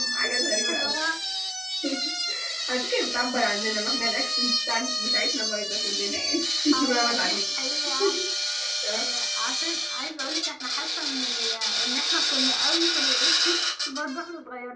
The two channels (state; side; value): identical; both; correlation 1.00